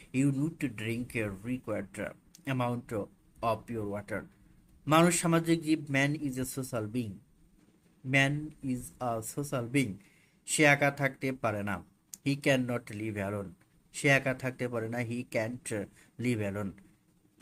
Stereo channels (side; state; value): both; identical; correlation 1.00